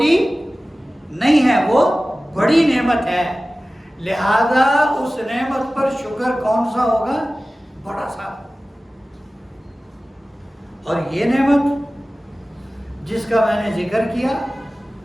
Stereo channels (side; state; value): both; normal; correlation 0.97